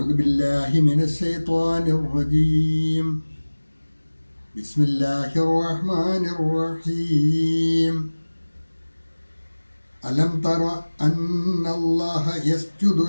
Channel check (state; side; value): inverted; both; correlation -1.00